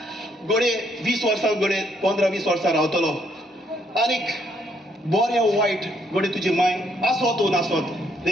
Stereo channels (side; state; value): both; normal; correlation 0.71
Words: गोडे 20 वर्सां गोडे 15-20 वर्सां रावतलो आनीक बरें वायट गोडे तुजी माय आसोत नासोत